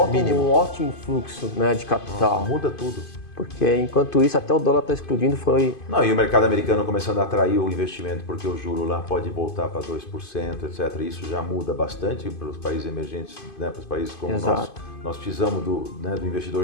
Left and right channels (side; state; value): right; late; 2.5 ms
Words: um ótimo fluxo, né, de capital. Muda tudo. Porque enquanto isso, até o dólar está explodindo, Não, e o mercado americano começando a atrair o investimento, porque o juro lá pode voltar para 2%, etc. Isso já muda bastante para os países emergentes, né, para os países como nós. Nós precisamos do